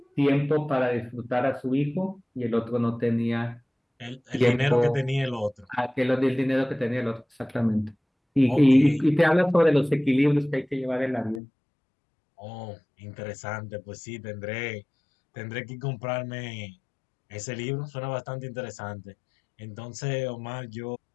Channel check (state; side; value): drops out; right; at 11.4 s